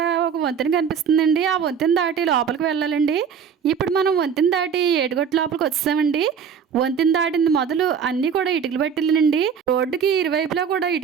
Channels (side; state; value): left; quieter; 7.1 dB